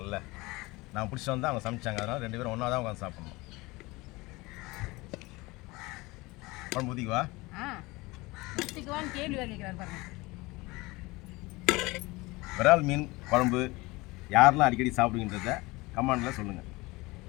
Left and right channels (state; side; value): quieter; right; 22.6 dB